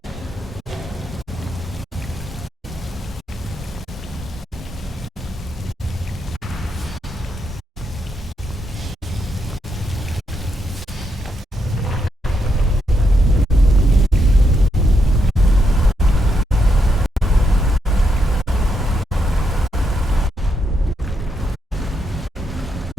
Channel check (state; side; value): normal; both; correlation 0.80